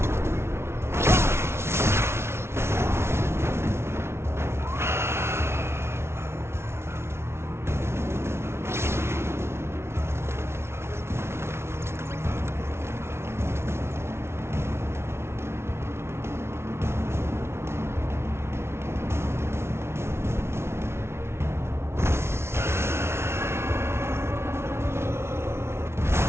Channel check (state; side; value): late; left; 0.12 ms